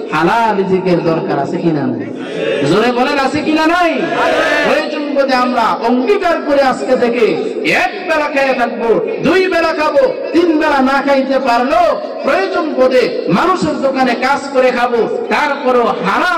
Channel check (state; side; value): identical; both; correlation 1.00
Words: হালাল রিজিকের দরকার আছে কিনা নাই? জোরে বলেন, আছে কিনা নাই? প্রয়োজন বোধে আমরা অঙ্গীকার করে আজকে থেকে 1 বেলা খেয়ে থাকবো, 2 বেলা খাবো, 3 বেলা না খাইতে পারলো প্রয়োজন বোধে মানুষের দোকানে কাজ করে খাবো, তারপরও